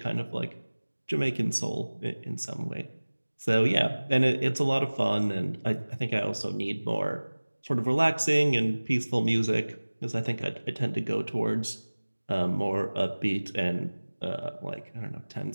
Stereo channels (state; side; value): inverted; both; correlation -1.00